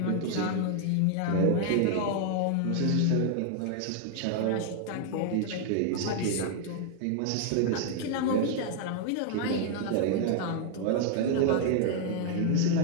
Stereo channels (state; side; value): different; both; correlation 0.00